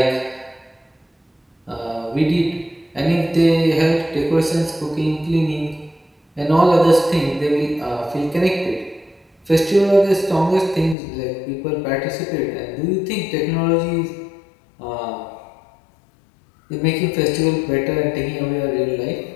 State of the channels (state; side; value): drops out; right; at 11.0 s